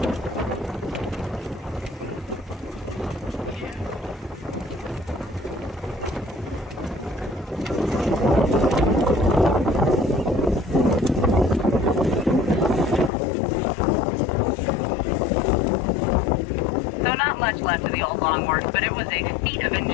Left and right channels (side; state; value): right; drops out; at 13.1 s